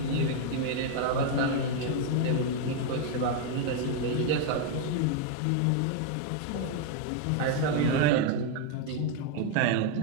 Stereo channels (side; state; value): both; different; correlation 0.00